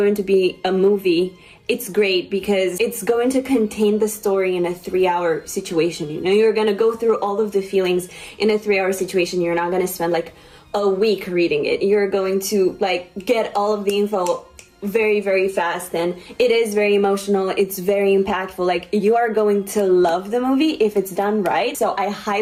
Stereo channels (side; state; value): both; identical; correlation 1.00